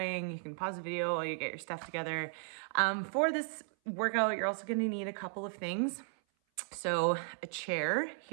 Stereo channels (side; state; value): left; silent; 54 dB below the other